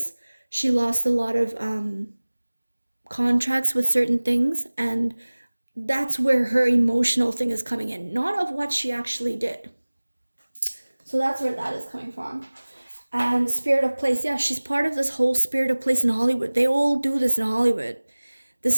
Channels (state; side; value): inverted; both; correlation -1.00